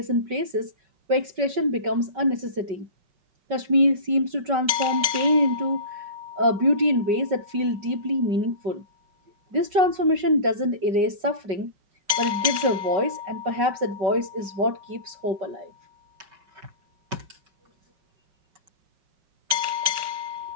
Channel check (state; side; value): late; left; 5.3 ms